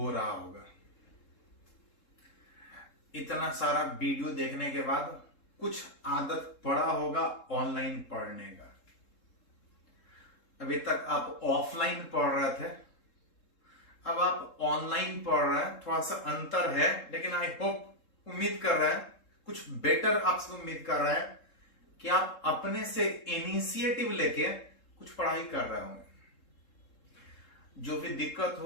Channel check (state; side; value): late; right; 3.7 ms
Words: रहा होगा। इतना सारा वीडियो देखने के बाद कुछ आदत पड़ा होगा ऑनलाइन पढ़ने का। अभी तक आप ऑफलाइन पढ़ रहे थे, अब आप ऑनलाइन पढ़ रहे हैं। थोड़ा सा अंतर है, लेकिन आई होप, उम्मीद कर रहे हैं कुछ बेटर आपसे उम्मीद कर रहे हैं कि आप अपने से इनिशिएटिव लेके कुछ पढ़ाई कर रहे होंगे। जो भी दिक्कत